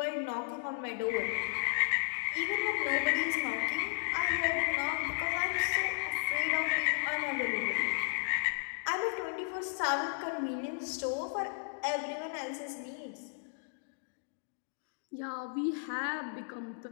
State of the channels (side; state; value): right; silent; digital silence